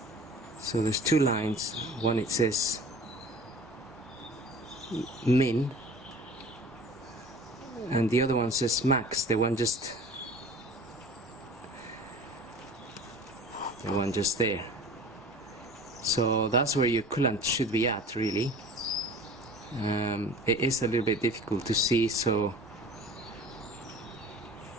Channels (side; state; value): both; normal; correlation 0.43